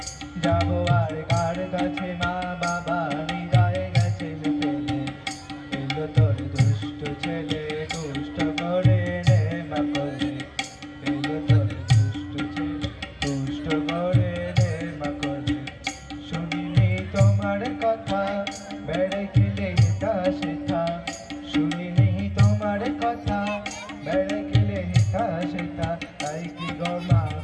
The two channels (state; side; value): identical; both; correlation 1.00